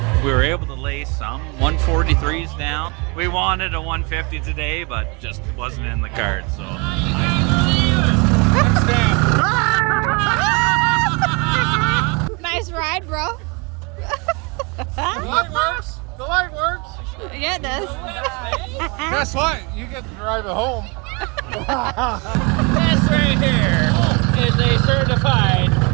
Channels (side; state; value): left; quieter; 30.2 dB